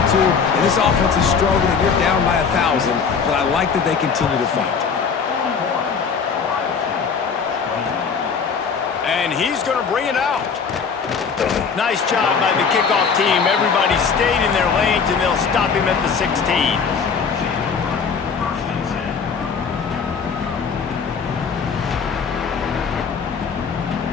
And this offense is struggling, and you're down by 1,000. But I like that they continue to fight. And he's going to bring it out. Nice job by the kickoff team. Everybody stayed in their lanes, and they'll stop him at the 16.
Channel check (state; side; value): quieter; right; 5.9 dB